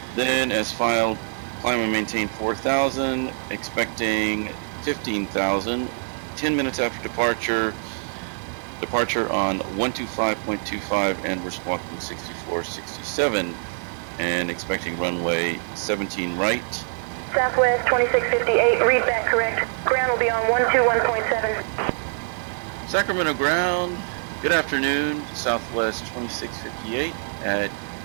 then as filed, climb and maintain 4,000, expecting 15,000, 10 minutes after departure, departure on 125.25, and we're squawking 6467, and expecting runway 17 right. Southwest 2658, read back correct. Ground will be on 121.7. Sacramento ground, good afternoon, Southwest 2658 at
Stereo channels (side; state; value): left; silent; digital silence